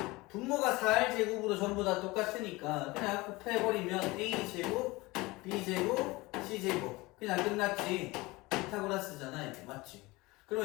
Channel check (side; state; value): right; quieter; 22.0 dB